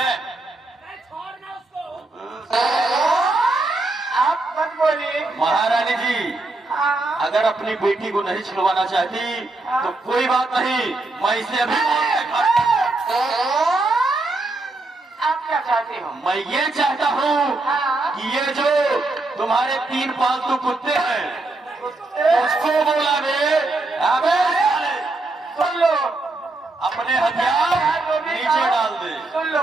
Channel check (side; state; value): left; quieter; 3.1 dB